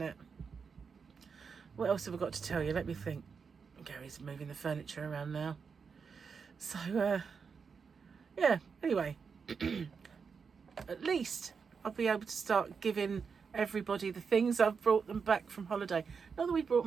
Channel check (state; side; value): quieter; left; 5.8 dB